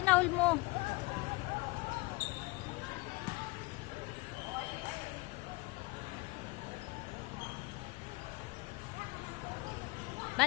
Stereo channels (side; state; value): right; quieter; 24.3 dB